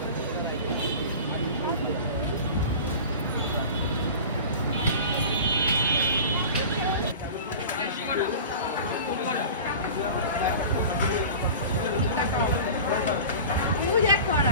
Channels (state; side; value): inverted; both; correlation -0.36